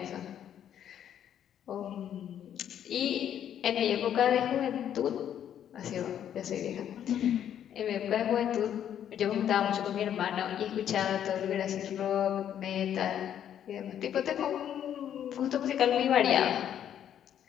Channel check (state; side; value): quieter; right; 9.9 dB